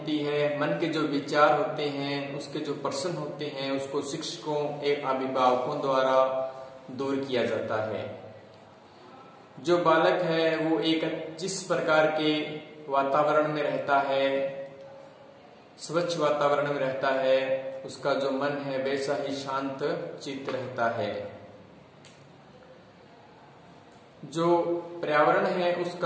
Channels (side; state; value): both; identical; correlation 1.00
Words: है, मन के जो विचार होते हैं, उसके जो प्रश्न होते हैं, उसको शिक्षकों एवं अभिभावकों द्वारा दूर किया जाता है। जो बालक है वो एक जिस प्रकार के वातावरण में रहता है, स्वच्छ वातावरण में रहता है, उसका जो मन है वैसा ही शांत चित्त रहता है। जो पर्यावरण है